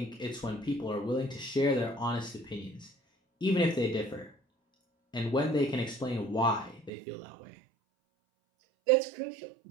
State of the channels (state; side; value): drops out; left; at 6.9 s